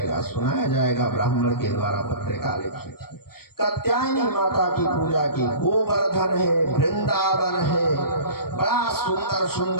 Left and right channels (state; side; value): late; right; 0.94 ms